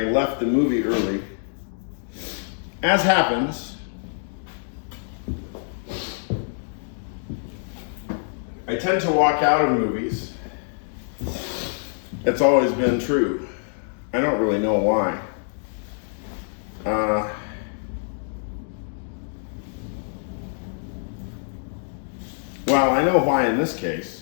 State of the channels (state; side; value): silent; right; digital silence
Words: left the movie early. As happens, I tend to walk out of movies. It's always been true. I don't really know why. Well, I know why in this